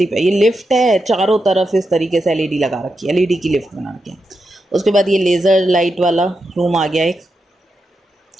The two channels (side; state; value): both; normal; correlation 0.87